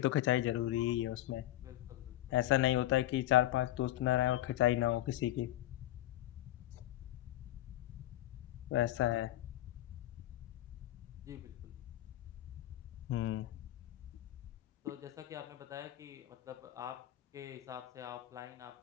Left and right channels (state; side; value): quieter; right; 14.3 dB